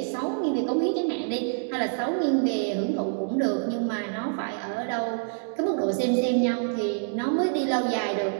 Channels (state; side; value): silent; left; digital silence